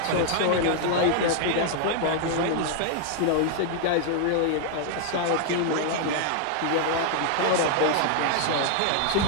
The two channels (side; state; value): both; different; correlation 0.00